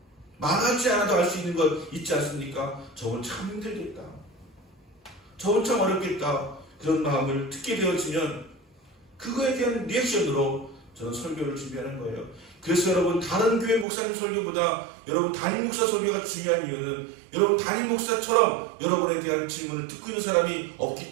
말하지 않아도 알 수 있는 것 있지 않습니까? 저건 참 힘들겠다, 저건 참 어렵겠다, 그런 마음을 듣게 되어지면 그거에 대한 리액션으로 저는 설교를 준비하는 거예요. 그래서 여러분 다른 교회 목사님 설교보다 여러분 담임 목사 설교가 중요한 이유는 여러분 담임 목사처럼 여러분에 대한 질문을 듣고 있는 사람이 없기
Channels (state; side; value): drops out; left; at 13.9 s